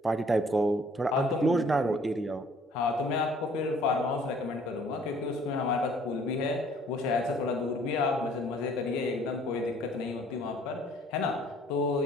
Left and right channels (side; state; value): both; normal; correlation 0.57